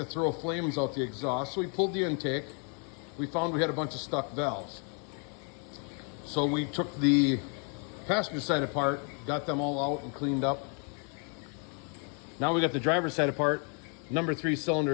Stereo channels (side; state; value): right; quieter; 39.2 dB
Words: throw flames out the exhaust. So we pulled the intake. We found we had a bunch of stuck valves. So we took the passenger side apart, got them all out and cleaned up. Now we got the driver's side apart. Number 3